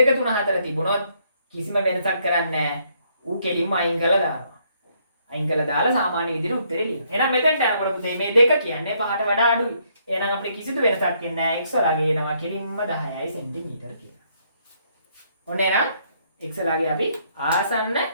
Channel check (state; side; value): inverted; both; correlation -0.70